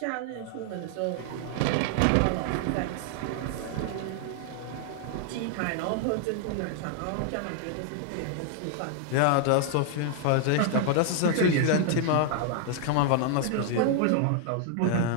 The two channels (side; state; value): both; different; correlation 0.00